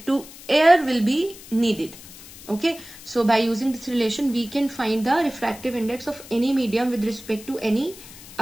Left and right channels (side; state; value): left; noise; hiss, 17 dB below the sound